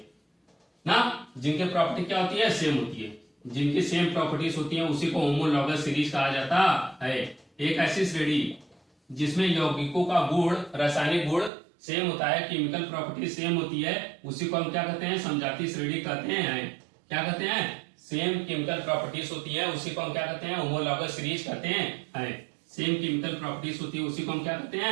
ना, जिनकी प्रॉपर्टी क्या होती है, सेम होती है, जिनकी सेम प्रॉपर्टीज होती है, उसी को होमोलॉगस सीरीज कहा जाता है। एक ऐसी श्रेणी जिसमें यौगिकों का गुण, रासायनिक गुण सेम होता है, केमिकल प्रॉपर्टी सेम होती है, उसी को हम क्या कहते हैं, समजातीय श्रेणी कहते हैं। क्या कहते हैं, सेम केमिकल प्रॉपर्टीज होती है, उसी को हम क्या कहते हैं, होमोलॉगस सीरीज कहते हैं। सेम केमिकल प्रॉपर्टीज होती है, उसी को हम क्या कहते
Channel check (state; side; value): drops out; left; at 11.5 s